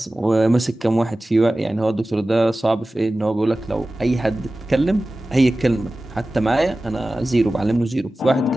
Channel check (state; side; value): normal; both; correlation 0.96